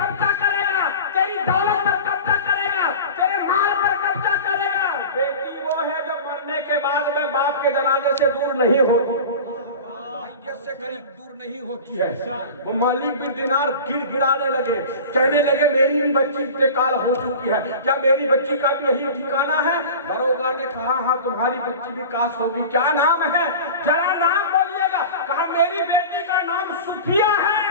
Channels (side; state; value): both; inverted; correlation -0.34